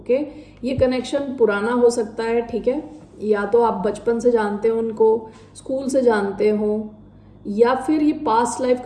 ये कनेक्शन पुराना हो सकता है। ठीक है, या तो आप बचपन से जानते हो उनको, स्कूल से जानते हो, या फिर ये पास्ट लाइफ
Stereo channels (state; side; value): identical; both; correlation 1.00